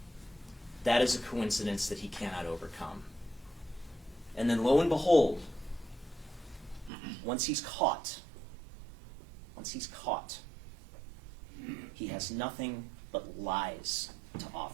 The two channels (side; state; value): left; drops out; at 6.9 s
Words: That is a coincidence that he cannot overcome. And then lo and behold, once he's caught, he has nothing but lies to